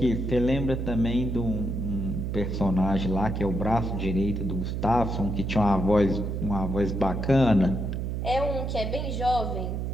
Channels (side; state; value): right; noise; hum, 2 dB below the sound